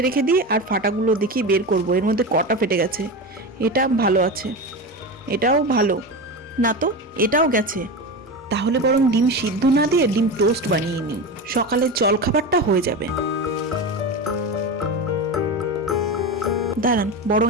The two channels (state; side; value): normal; both; correlation 0.22